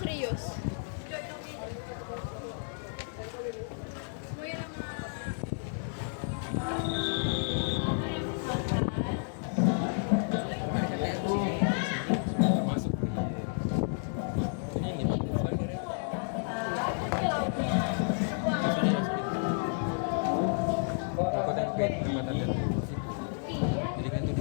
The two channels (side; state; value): right; silent; digital silence